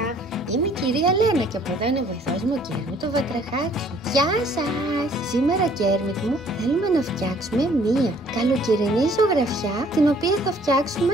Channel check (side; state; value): both; normal; correlation 0.59